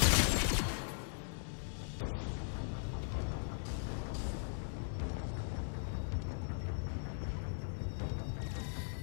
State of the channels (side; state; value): right; silent; 52 dB below the other